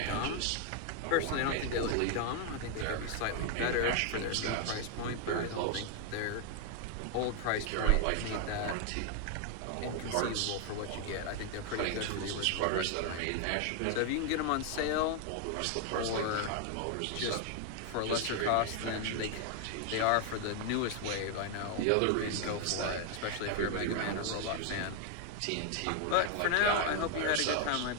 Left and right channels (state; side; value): different; both; correlation 0.00